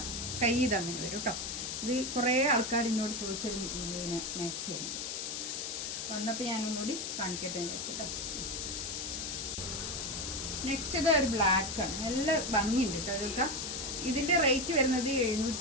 കൈ ഇതങ്ങനെ വരും കേട്ടോ. ഇത് കുറേ ആൾക്കാർ എന്നോട് ചോദിച്ചൊരു മാക്സിയാണ്. വന്നപ്പോൾ ഞാനൊന്നുകൂടി കാണിക്കട്ടെ എന്ന് വെച്ചിട്ടോ. നെക്സ്റ്റ് ഇത് ഒരു ബ്ലാക്കാണ്, നല്ല ഭംഗിയുണ്ട് കേട്ടോ. ഇതൊക്കെ ഇതിൻ്റെ റേറ്റ് വരുന്നത്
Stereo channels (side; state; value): left; noise; hiss, 4 dB below the sound